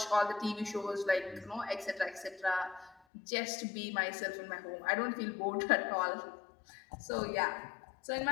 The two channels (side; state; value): right; drops out; at 3.0 s